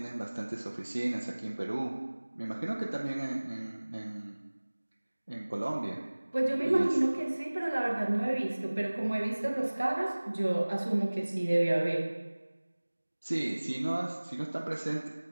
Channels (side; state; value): both; inverted; correlation -1.00